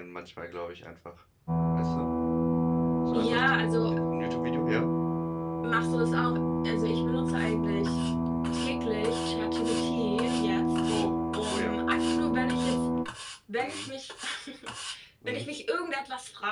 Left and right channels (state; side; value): identical; both; correlation 1.00